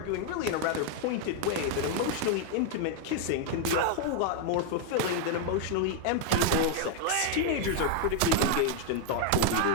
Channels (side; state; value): both; different; correlation 0.00